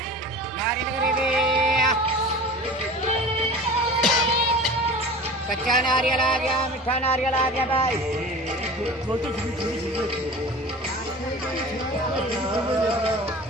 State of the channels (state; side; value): normal; both; correlation 0.37